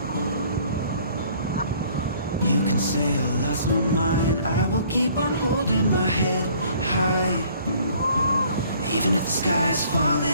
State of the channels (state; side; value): inverted; both; correlation -0.57